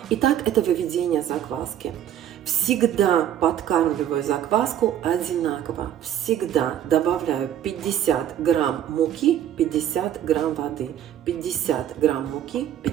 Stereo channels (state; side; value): quieter; left; 10.7 dB